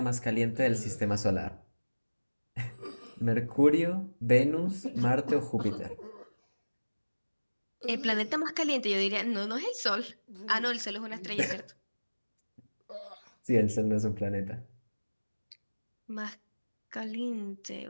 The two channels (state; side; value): inverted; both; correlation -1.00